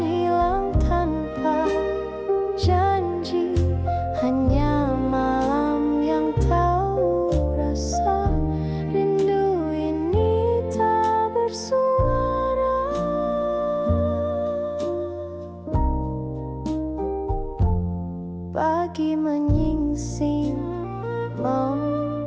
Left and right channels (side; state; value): both; identical; correlation 1.00